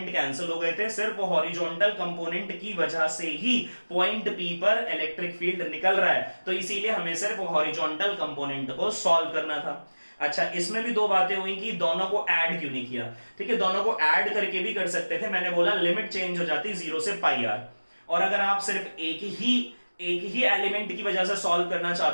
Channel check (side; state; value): both; inverted; correlation -1.00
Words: कैंसिल हो गए थे, सिर्फ हॉरिजॉन्टल कंपोनेंट की वजह से ही पॉइंट पी पर इलेक्ट्रिक फील्ड निकल रहा है, तो इसीलिए हमें सिर्फ हॉरिजॉन्टल कंपोनेंट को सॉल्व करना था। अच्छा, इसमें भी दो बातें हुई कि दोनों को ऐड क्यों नहीं किया। ठीक है, दोनों को ऐड करके भी कर सकते थे, मैंने बोला लिमिट चेंज हो जाती 0 से पाई आर। और अगर आप सिर्फ एक ही एलिमेंट की वजह से सॉल्व करना